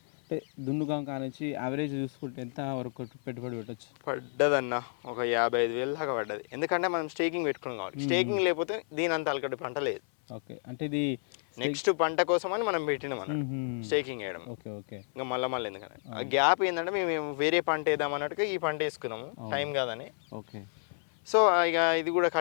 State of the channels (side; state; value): right; silent; 57 dB below the other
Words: అంటే దున్నుగా కానించి యావరేజ్ చూసుకుంటే ఎంత వరకు పెట్టుబడి పెట్టచ్చు? పడ్డదన్న ఒక 55,000 దాకా పడ్డది. ఎందుకంటే మనం స్టేకింగ్ పెట్టుకున్నాం కాబట్టి. స్టేకింగ్ లేకపోతే దీని అంత అలకటి పంట లేదు. ఓకే, అంటే ఇది నెక్స్ట్ పంట కోసం అని మనం పెట్టినాం స్టేకింగ్ వేయడం. ఓకే ఓకే, ఇంకా మళ్ళీ ఎందుకంటే ఆ గ్యాప్ ఏంటంటే మేము వేరే పంట వేద్దాం అన్నట్టుగా ఈ పంట వేసుకున్నాము, టైం కాదని. ఓకే, సో ఇక ఇది కూడా